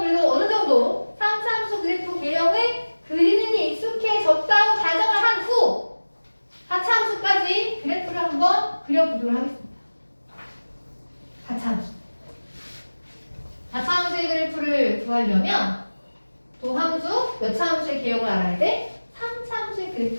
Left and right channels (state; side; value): inverted; both; correlation -1.00